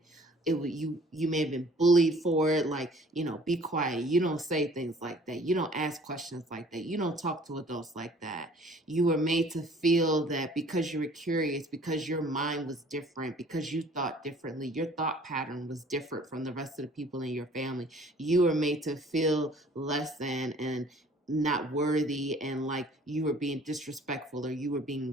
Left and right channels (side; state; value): both; normal; correlation 0.53